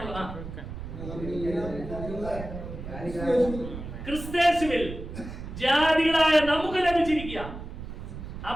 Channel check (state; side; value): noise; right; rumble, 9 dB below the sound